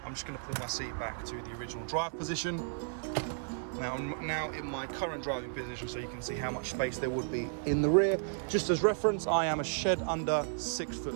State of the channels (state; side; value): silent; left; 55 dB below the other